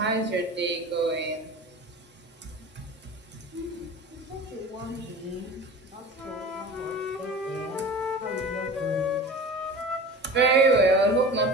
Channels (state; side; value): normal; both; correlation 0.36